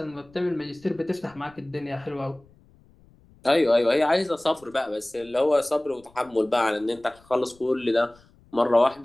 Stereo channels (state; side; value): noise; left; rumble, 28 dB below the sound